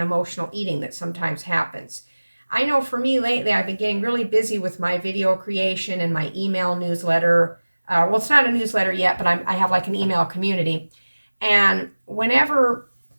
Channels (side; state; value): both; inverted; correlation -1.00